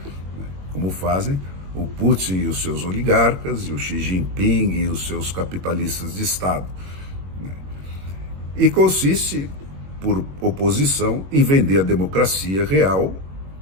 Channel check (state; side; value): late; left; 21 ms